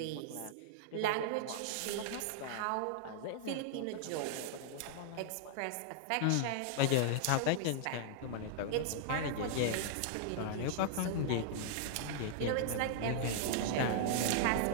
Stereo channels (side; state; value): both; different; correlation -0.01